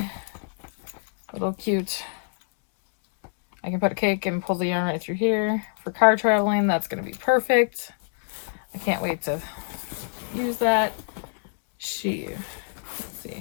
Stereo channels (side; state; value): right; silent; 61 dB below the other